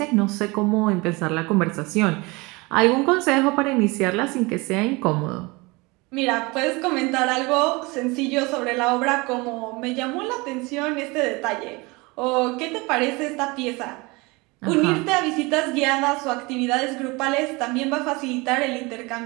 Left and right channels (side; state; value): left; quieter; 25.1 dB